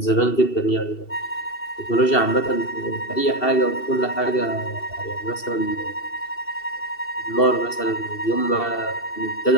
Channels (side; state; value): right; late; 2.7 ms